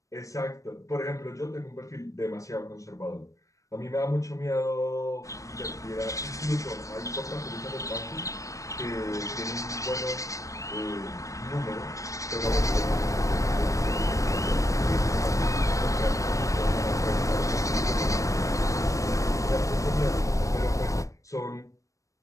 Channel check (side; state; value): right; late; 0.16 ms